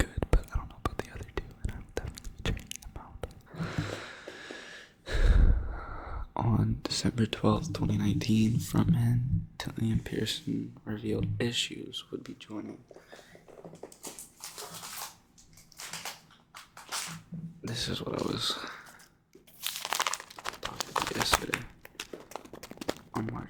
but I don't know about the other two, and I will definitely be checking them out. On December 12th, 2019, frontman Dillian Pearson revealed Issues would be joining. This is what I was talking about yesterday. On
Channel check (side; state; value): both; identical; correlation 1.00